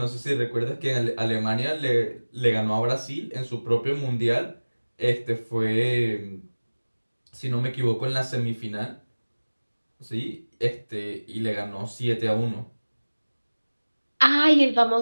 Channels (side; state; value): both; inverted; correlation -1.00